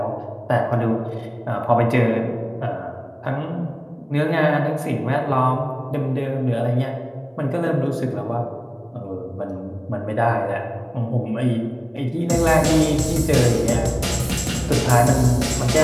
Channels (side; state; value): both; identical; correlation 1.00